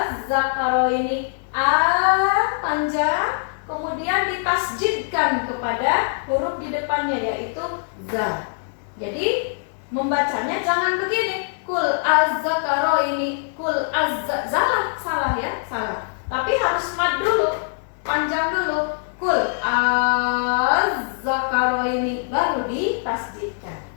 ini a panjang, kemudian ditasjidkan kepada huruf di depannya yaitu za. Jadi membacanya jangan begini, kul az-zakaro ini, kul salah ya, salah. Tapi harus mad dulu, panjang dulu, kul az-zakaro ini, baru ditasjidkan,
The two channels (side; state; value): right; silent; digital silence